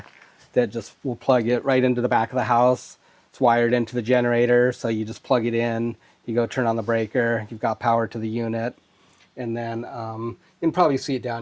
that just will plug it right into the back of the house. It's wired into the generator, so you just plug it in, you go turn on the breaker, you've got power to the unit, and then you can probably see it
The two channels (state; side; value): identical; both; correlation 1.00